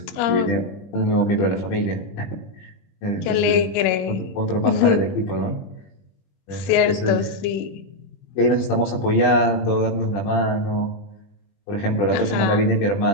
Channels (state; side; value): late; right; 20 ms